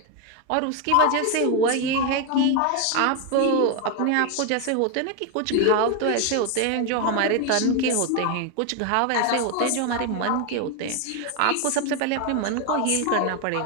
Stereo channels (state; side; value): different; both; correlation 0.01